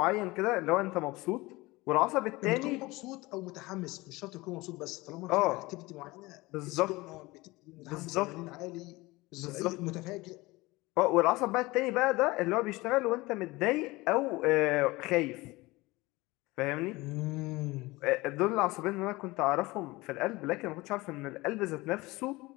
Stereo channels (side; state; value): right; quieter; 21.5 dB